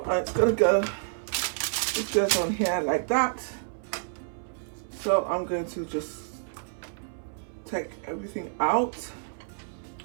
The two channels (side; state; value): left; silent; 58 dB below the other